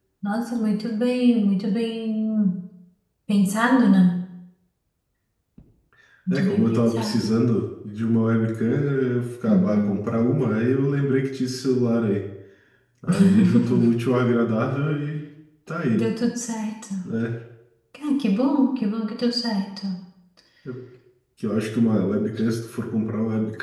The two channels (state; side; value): identical; both; correlation 1.00